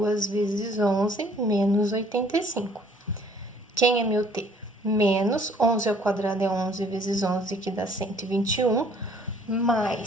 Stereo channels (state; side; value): normal; both; correlation 0.58